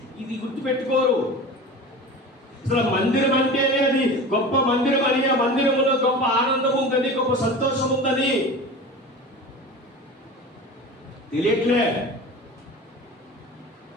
ఇది గుర్తుపెట్టుకోరు. అసలు మందిరం అంటేనే అది గొప్ప మందిరం అని, ఆ మందిరంలో గొప్ప ఆనందం ఉందని, గొప్ప సంతోషం ఉందని తెలియట్లేదు.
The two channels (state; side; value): normal; both; correlation 0.33